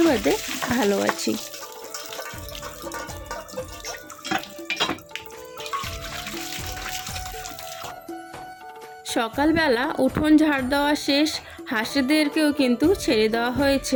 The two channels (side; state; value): both; identical; correlation 1.00